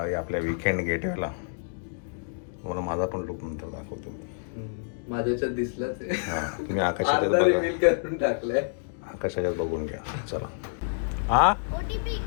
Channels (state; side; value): silent; right; digital silence